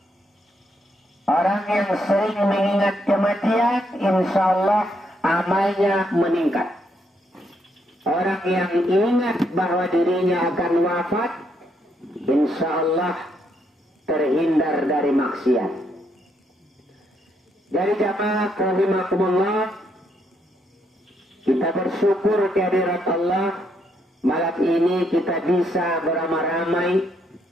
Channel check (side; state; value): both; normal; correlation 0.75